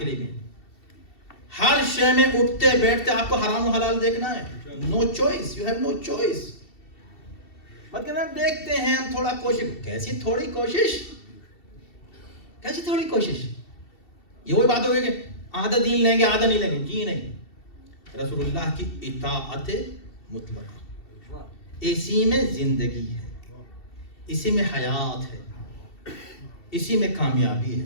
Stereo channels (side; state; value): right; late; 2.7 ms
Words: لیے بھی. ہر شے میں اٹھتے بیٹھتے آپ کو حرام و حلال دیکھنا ہے. No choice, you have no choice. مت کہنا دیکھتے ہیں ہم تھوڑا کوشش. کیسی تھوڑی کوشش, کیسی تھوڑی کوشش؟ یہ وہی بات ہو گئی کہ آدھا دین لیں گے آدھا نہیں لیں گے. جی نہیں, رسول اللہ کی اطاعت مطلقہ, اسی میں زندگی ہے, اسی میں حیات ہے, اسی میں کامیابی